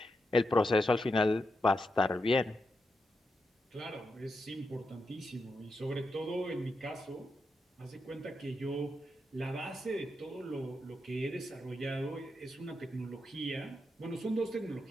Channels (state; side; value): normal; both; correlation 0.85